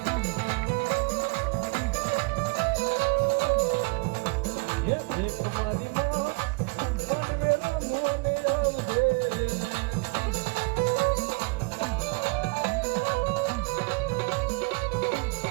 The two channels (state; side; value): quieter; left; 31.1 dB